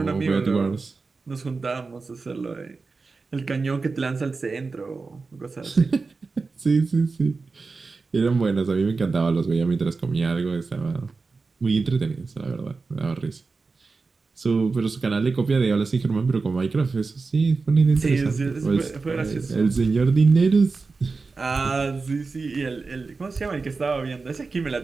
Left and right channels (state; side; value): quieter; left; 4.2 dB